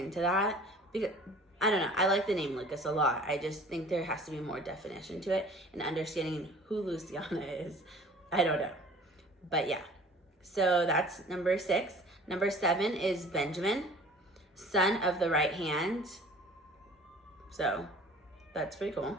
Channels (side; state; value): both; normal; correlation 0.47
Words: that, because I don't know. I like the name Lucas a lot. I just think there has to be more definition to it, and understanding who Louisiana is. I don't know. But yeah. So that's number 6. Number 7 is Benjamin, son of the right hand. So that's pretty cool.